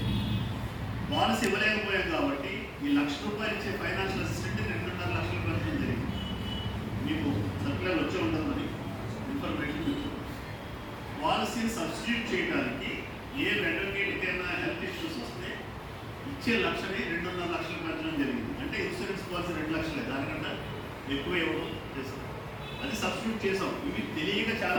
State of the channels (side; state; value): both; identical; correlation 1.00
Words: పాలసీ ఇవ్వలేకపోయాం కాబట్టి ఈ 1,00,000 రూపాయలు ఇచ్చే ఫైనాన్షియల్ అసిస్టెంట్ 2.5 లక్షలు పెంచడం జరిగింది. మీకు సర్కులర్ వచ్చే ఉంటుందని ఇన్ఫర్మేషన్ మీకు. పాలసీని సబ్స్టిట్యూట్ చేయడానికి ఏ అడ్వకేట్కైనా హెల్త్ ఇష్యూస్ వస్తే ఇచ్చే 1,00,000ని 2.5 లక్షలు పెంచడం జరిగింది. అంటే ఇన్సూరెన్స్ పాలసీ 2 లక్షలే, దానికన్నా ఎక్కువ ఇవ్వడం చేసాం. అది సబ్స్టిట్యూట్ చేసాం. ఇవి తెలియక